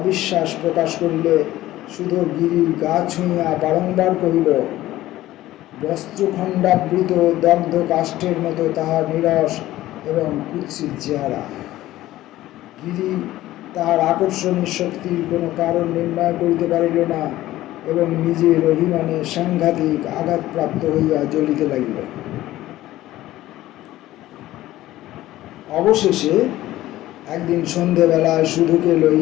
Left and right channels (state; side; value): quieter; right; 15.4 dB